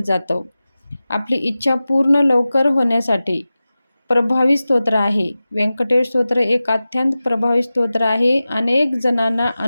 जातं. आपली इच्छा पूर्ण लवकर होण्यासाठी प्रभावी स्तोत्र आहे. व्यंकटेश स्तोत्र एक अत्यंत प्रभावी स्तोत्र आहे. अनेक जणांना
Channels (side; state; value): both; inverted; correlation -0.96